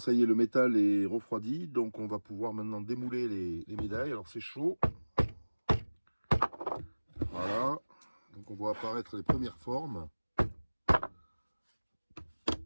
y est, le métal est refroidi, donc on va pouvoir maintenant démouler les médailles. Alors, c'est chaud. Voilà. Donc, on voit apparaître les premières formes.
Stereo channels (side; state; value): both; inverted; correlation -1.00